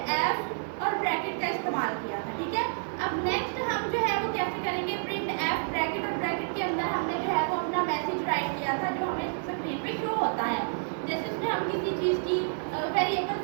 एफ और ब्रैकेट का इस्तेमाल किया था, ठीक है। अब नेक्स्ट हम जो है वो कैसे करेंगे? प्रिंट एफ ब्रैकेट और ब्रैकेट के अंदर हमने जो है वो अपना मैसेज राइट किया था जो हमें स्क्रीन पे शो होता है। जैसे उसमें हम किसी चीज़ की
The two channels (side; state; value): left; silent; 58 dB below the other